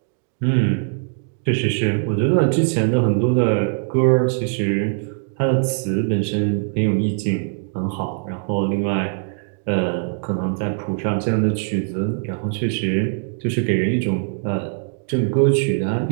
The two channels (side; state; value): left; silent; 65 dB below the other